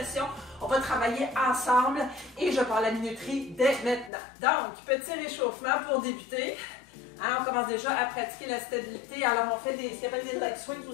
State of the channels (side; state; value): right; drops out; at 4.1 s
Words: On va travailler ensemble et je parle la minuterie dès maintenant. Donc, petit réchauffement pour débuter. Hein, on commence déjà à pratiquer la stabilité. Alors, on fait ce qu'on appelle des leg swings ou